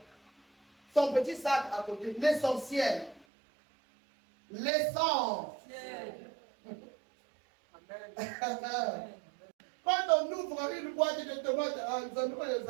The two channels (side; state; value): left; drops out; at 3.2 s